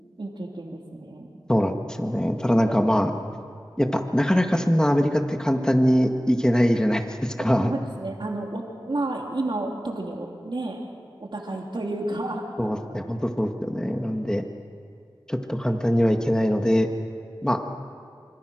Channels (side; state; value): both; normal; correlation 0.97